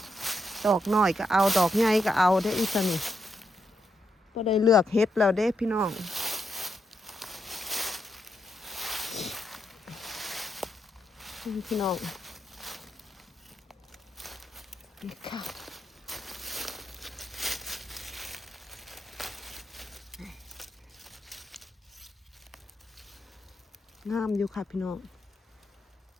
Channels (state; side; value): normal; both; correlation 0.80